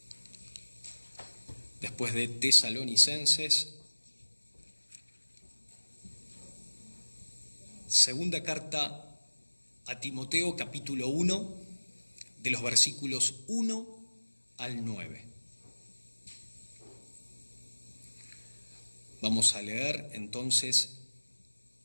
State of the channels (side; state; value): both; inverted; correlation -1.00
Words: Después de Tesalonicenses, segunda carta a Timoteo, capítulo 1, de los versículos 1 al 9. Vamos a leer entonces